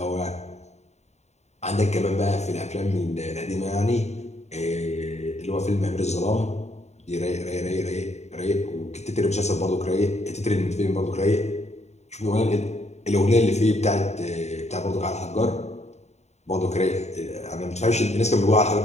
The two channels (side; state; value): right; late; 0.32 ms